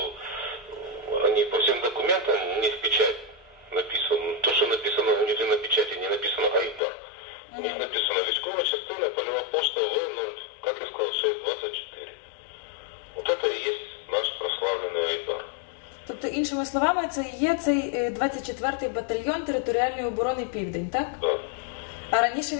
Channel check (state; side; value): drops out; right; at 6.8 s